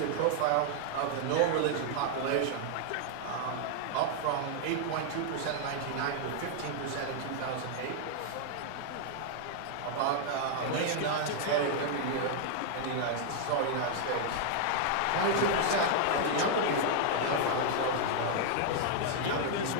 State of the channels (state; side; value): different; both; correlation 0.00